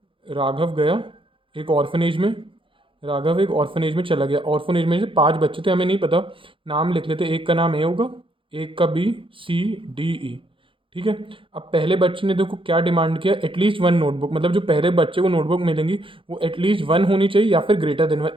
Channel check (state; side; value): late; left; 0.25 ms